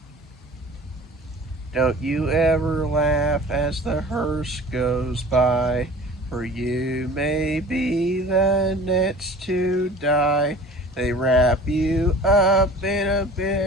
Don't you ever laugh as the hearse goes by, for you may be the next to die. They wrap you up in a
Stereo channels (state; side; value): normal; both; correlation 0.43